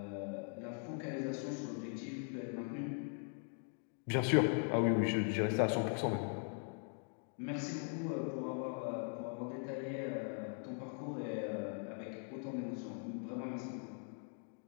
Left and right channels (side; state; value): right; silent; 51 dB below the other